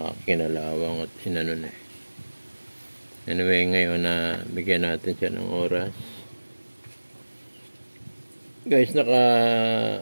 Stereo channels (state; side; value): inverted; both; correlation -1.00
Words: kinalawang at inanon eh. Anyway, ngayon na bigyan natin siya ng oras. Guys,